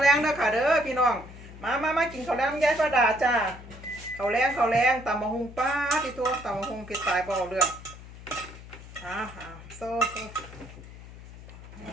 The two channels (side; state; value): left; noise; hum, 16 dB below the sound